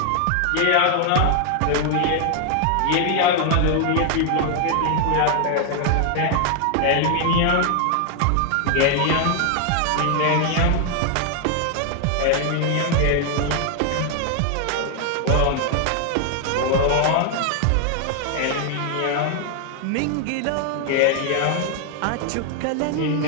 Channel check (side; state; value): both; different; correlation 0.00